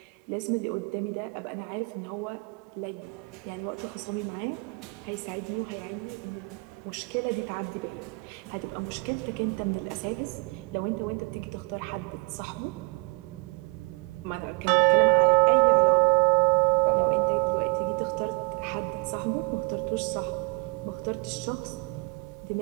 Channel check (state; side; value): quieter; left; 30.0 dB